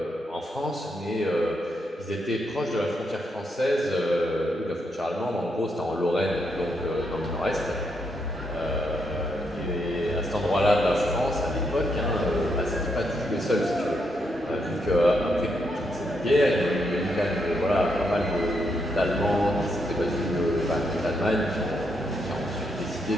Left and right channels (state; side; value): normal; both; correlation 0.79